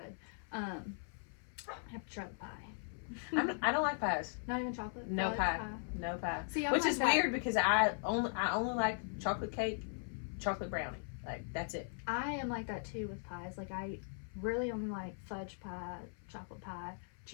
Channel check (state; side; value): silent; right; 52 dB below the other